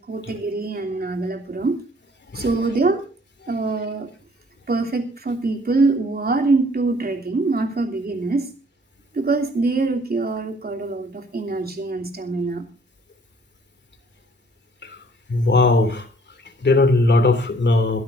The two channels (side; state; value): both; normal; correlation 0.59